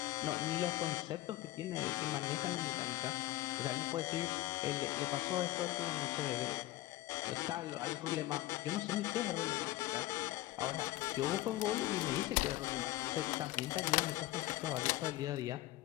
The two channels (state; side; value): quieter; right; 16.7 dB